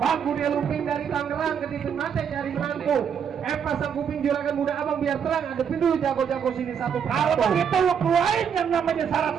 dia lumping dari Tangerang ke Titik Mate cari menantu. Pasang kuping juragan muda abang biar terang. Adepin dulu jago-jago sini satu Kalau persatu. begitu lu keluarin yang namanya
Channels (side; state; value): left; quieter; 7.5 dB